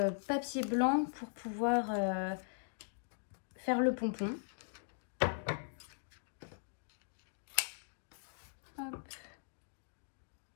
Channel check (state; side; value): silent; right; digital silence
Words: papier blanc pour pouvoir faire le pompon. Hop.